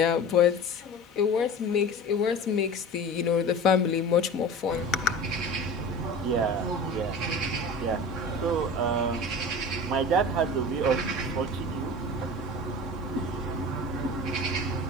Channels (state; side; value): normal; both; correlation 0.35